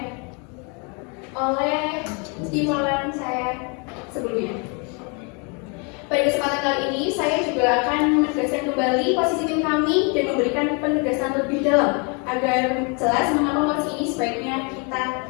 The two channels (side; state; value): right; quieter; 34.2 dB